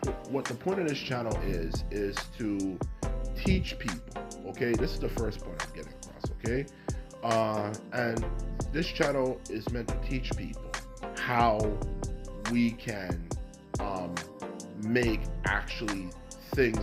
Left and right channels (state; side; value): identical; both; correlation 1.00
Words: of this channel is to teach people. Okay, this is the first point I'm getting across. Okay, and this channel is meant to teach people how we can make actually